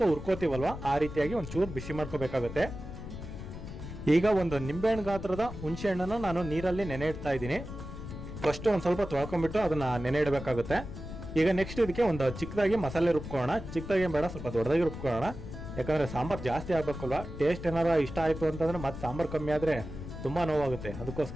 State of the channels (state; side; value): noise; left; rumble, 10 dB below the sound